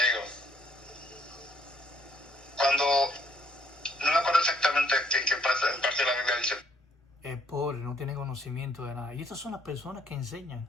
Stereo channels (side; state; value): both; normal; correlation 0.67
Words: cuando, no me acuerdo exactamente qué pasa, en parte de la Biblia dice... Es pobre, no tiene conocimiento de nada. Y estas son las personas que